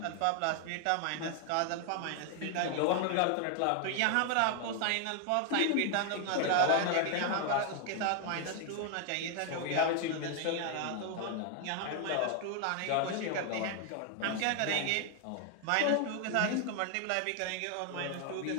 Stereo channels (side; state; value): both; different; correlation 0.00